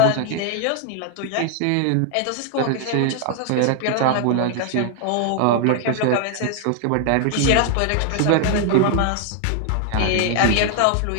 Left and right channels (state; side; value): different; both; correlation 0.00